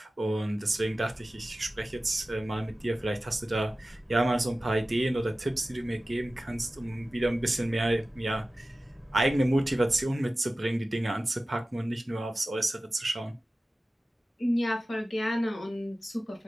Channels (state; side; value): normal; both; correlation 0.96